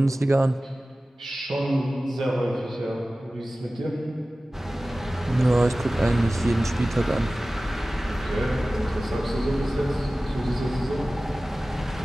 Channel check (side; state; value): both; normal; correlation 0.97